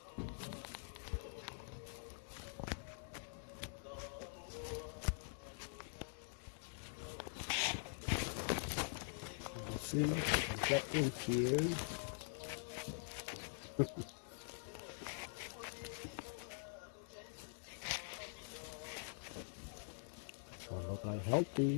Let's see, get in here. So look like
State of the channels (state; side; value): silent; right; digital silence